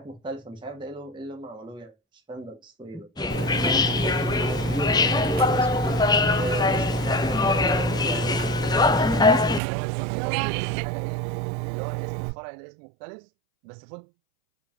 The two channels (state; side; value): drops out; left; at 9.6 s